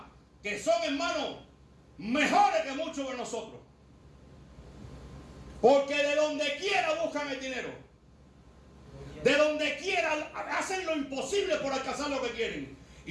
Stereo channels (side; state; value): both; identical; correlation 1.00